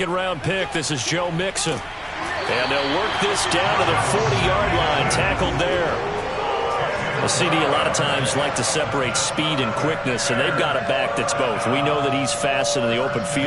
pick, this is Joe Mixon. And they'll work this down to the 40-yard line, tackled there. A CD a lot of times like to separate speed and quickness, and they've got a back that's both. We know that he's fast in the open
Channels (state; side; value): identical; both; correlation 1.00